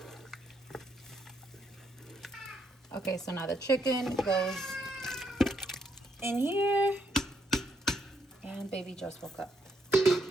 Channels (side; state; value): both; normal; correlation 0.75